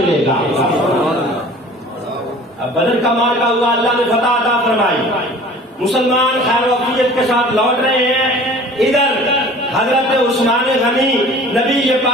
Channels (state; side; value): normal; both; correlation 0.45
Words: گا. اب بدر کا مارکا ہوا، اللہ نے فتح عطا فرمائی، مسلمان خیر و عافیت کے ساتھ لوٹ رہے ہیں. ادھر حضرت عثمان غنی نبی